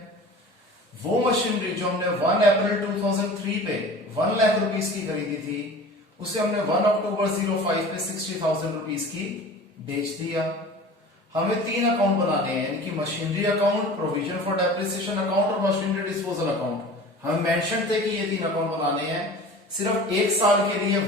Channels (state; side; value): normal; both; correlation 0.40